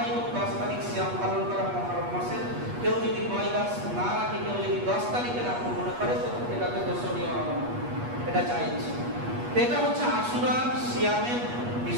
এবং ১০ তারিখ সিয়াম পালন করা মুহররম মাসের। কেউ যদি ৯-১০ না রাখে, কেউ যদি ১০ তারিখে রাখবো মনে করে, তো এটাতে দোষণীয় হবে না, এটা জায়েজ। এটা হচ্ছে আশুরার সিয়ামের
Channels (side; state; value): left; late; 8.3 ms